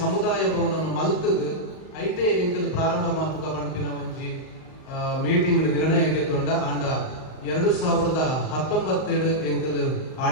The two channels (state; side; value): late; right; 38 ms